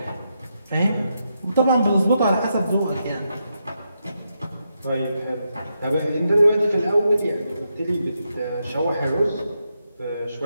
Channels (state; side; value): inverted; both; correlation -0.83